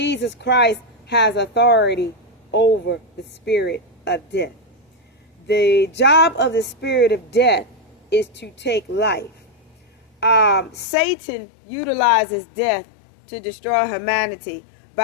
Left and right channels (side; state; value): right; drops out; at 10.9 s